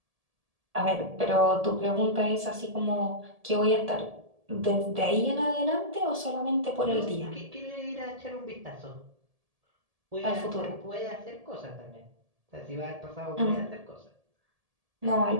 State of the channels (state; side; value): late; left; 1.7 ms